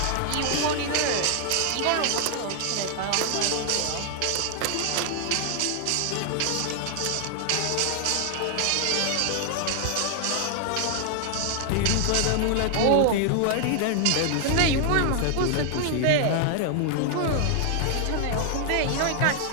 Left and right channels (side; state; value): both; different; correlation 0.00